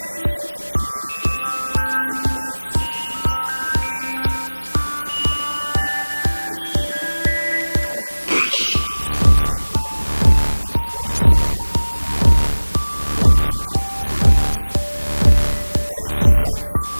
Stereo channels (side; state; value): both; inverted; correlation -1.00